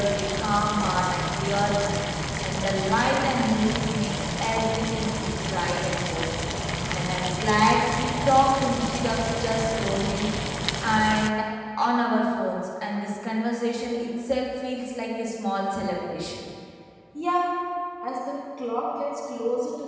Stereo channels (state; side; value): identical; both; correlation 1.00